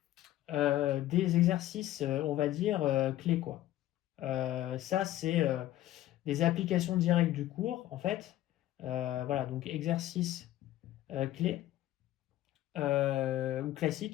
des exercices, on va dire, clés, quoi. Ça, c'est des applications directes du cours, en fait. Voilà, donc exercices clés, ou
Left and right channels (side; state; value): right; quieter; 14.2 dB